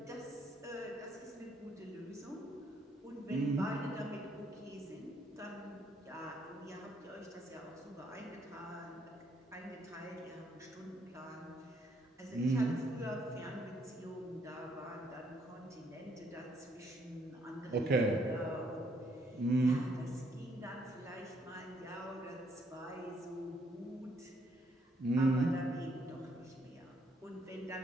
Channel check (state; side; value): normal; both; correlation 0.70